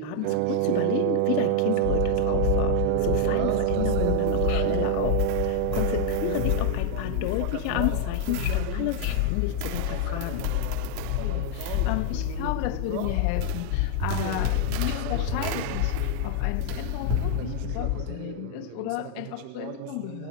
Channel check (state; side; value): different; both; correlation 0.00